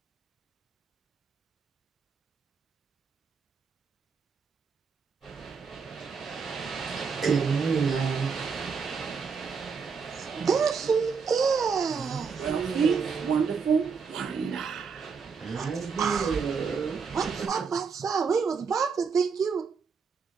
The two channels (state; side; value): quieter; left; 5.6 dB